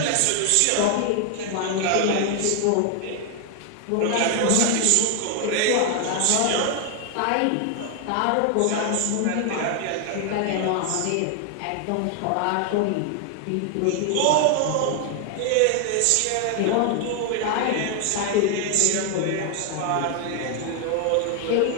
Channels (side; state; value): both; different; correlation 0.00